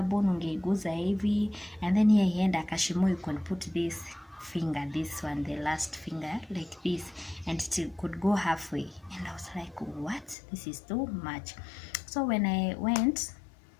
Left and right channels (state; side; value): drops out; right; at 10.4 s